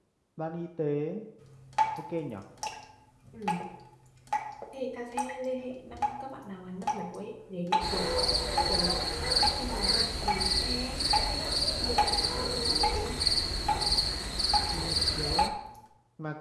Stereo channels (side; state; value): both; identical; correlation 1.00